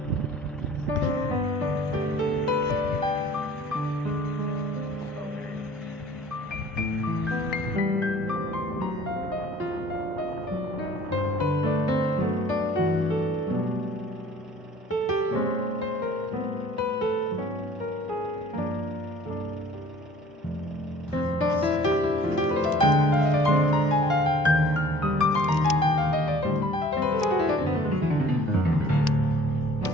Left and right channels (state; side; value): normal; both; correlation 0.51